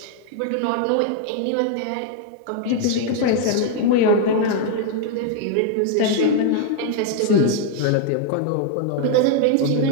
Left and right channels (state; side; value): different; both; correlation 0.00